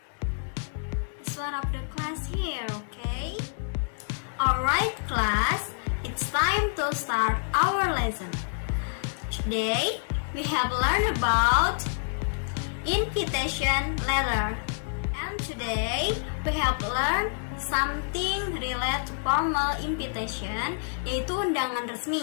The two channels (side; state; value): right; silent; digital silence